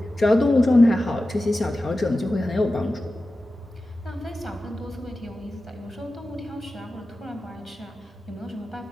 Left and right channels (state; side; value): normal; both; correlation 0.94